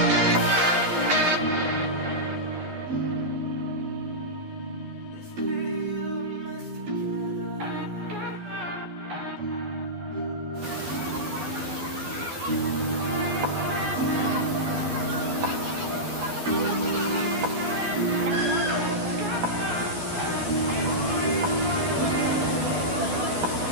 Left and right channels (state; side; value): late; left; 12 ms